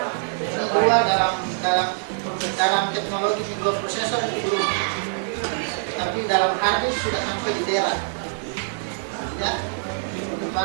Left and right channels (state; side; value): silent; left; 56 dB below the other